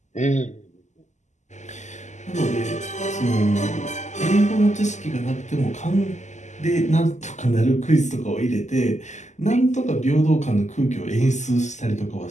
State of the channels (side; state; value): right; late; 0.34 ms